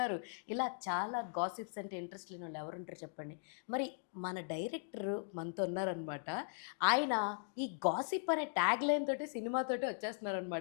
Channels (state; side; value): silent; right; digital silence